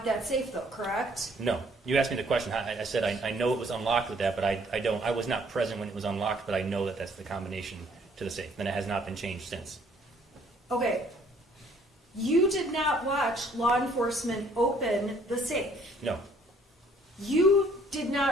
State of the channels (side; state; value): both; normal; correlation 0.61